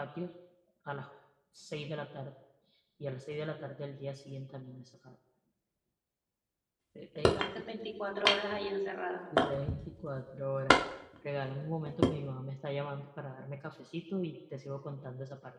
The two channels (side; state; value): both; identical; correlation 1.00